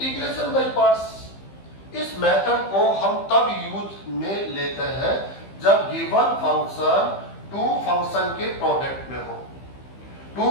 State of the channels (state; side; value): late; right; 15 ms